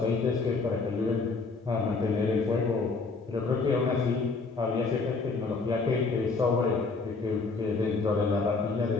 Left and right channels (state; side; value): quieter; right; 4.1 dB